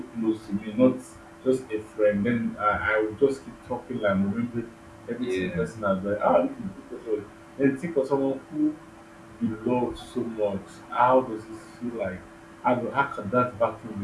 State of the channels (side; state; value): both; identical; correlation 1.00